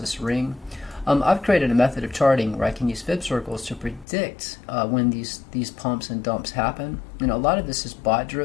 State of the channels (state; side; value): drops out; right; at 4.0 s